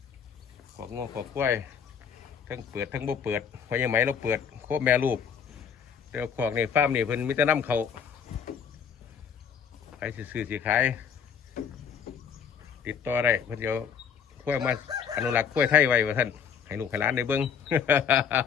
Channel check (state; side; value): quieter; right; 7.3 dB